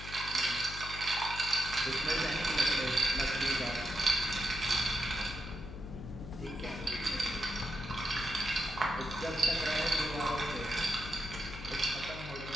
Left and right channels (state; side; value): noise; left; hum, 11 dB below the sound